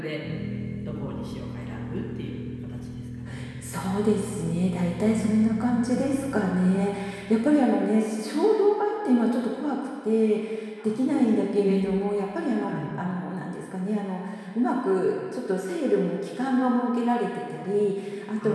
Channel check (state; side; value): identical; both; correlation 1.00